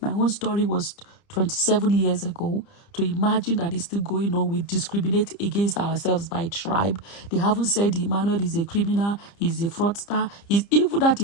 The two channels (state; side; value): late; right; 30 ms